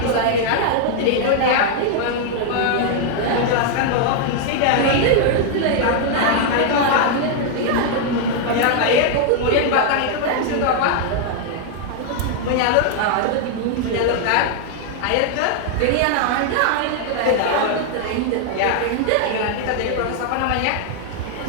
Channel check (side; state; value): both; different; correlation 0.00